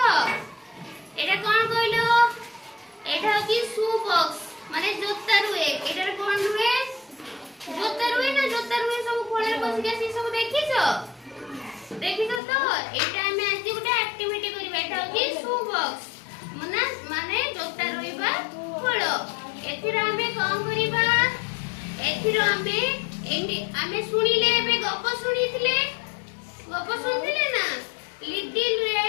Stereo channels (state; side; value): drops out; right; at 12.4 s